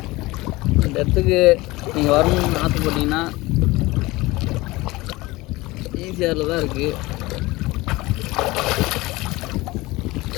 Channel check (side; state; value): right; quieter; 20.9 dB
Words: இந்த இடத்துக்கு நீங்கள் வரணும்னு ஆசைப்பட்டீங்கன்னா ஈஸியாரில் தான் இருக்குது.